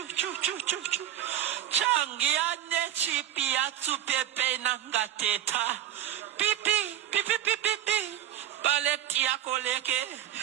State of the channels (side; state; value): left; quieter; 11.7 dB